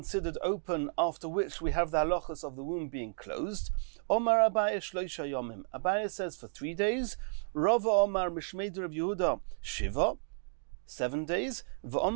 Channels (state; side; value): silent; left; digital silence